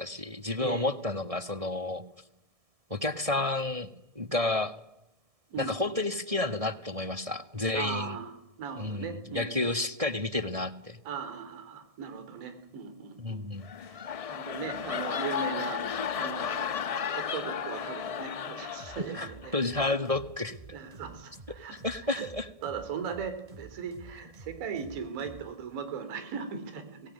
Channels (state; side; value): late; left; 1.6 ms